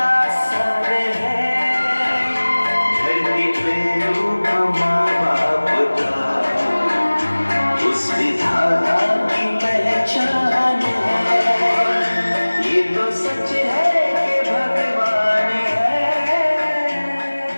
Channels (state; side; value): inverted; both; correlation -1.00